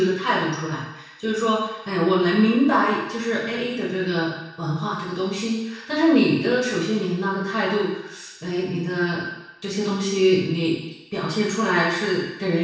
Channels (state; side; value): identical; both; correlation 1.00